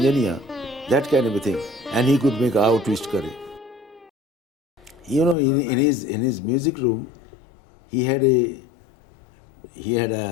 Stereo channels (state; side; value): drops out; right; at 5.4 s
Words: that kind of a thing, and he could make Aao Twist Kare. You know, in his music room, he had a